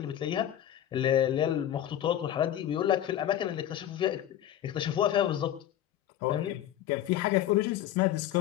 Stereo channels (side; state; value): right; quieter; 11.6 dB